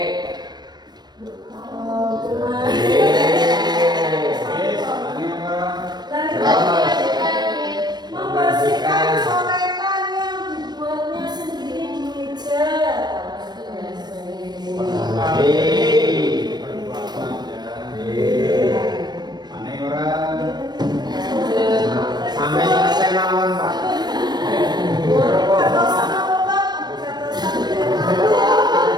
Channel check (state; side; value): late; left; 0.20 ms